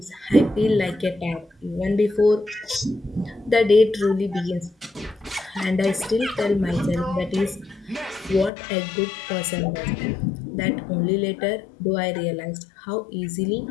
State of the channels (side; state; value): right; drops out; at 8.5 s